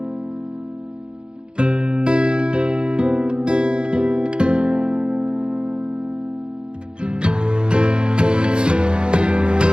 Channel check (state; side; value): late; left; 0.050 ms